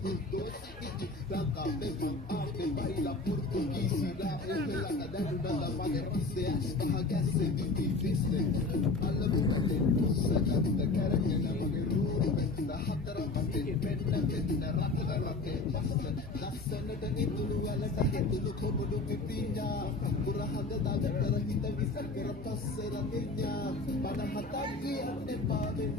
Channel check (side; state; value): right; quieter; 3.4 dB